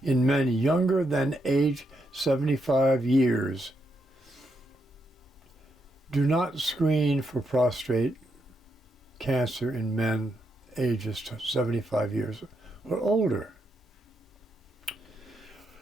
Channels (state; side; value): normal; both; correlation 0.80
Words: in men younger than age 75 years. Do not screen for prostate cancer in men ages 75 years or older.